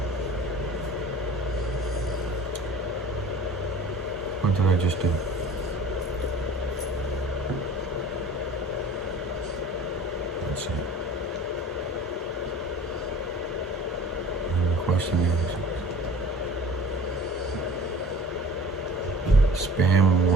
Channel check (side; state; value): both; normal; correlation 0.44